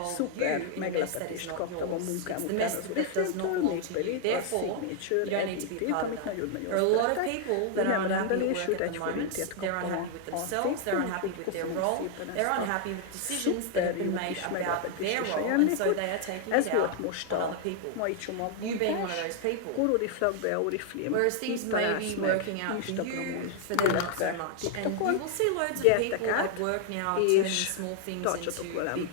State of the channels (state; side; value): different; both; correlation 0.00